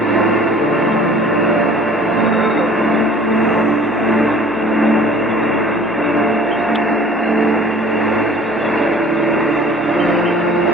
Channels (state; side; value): normal; both; correlation 0.49